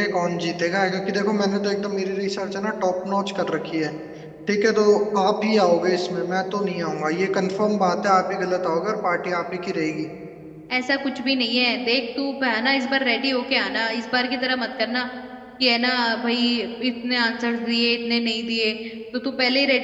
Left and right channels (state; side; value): identical; both; correlation 1.00